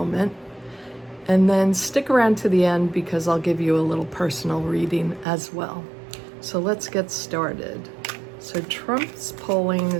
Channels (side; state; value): left; drops out; at 5.2 s